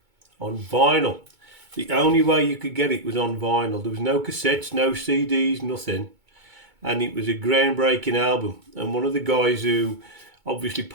on vinyl. The only way you could get it was on vinyl. There was no cassettes, no CDs, nothing. And it was a groundbreaking album. And one of the guys who obviously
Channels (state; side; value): late; left; 2.2 ms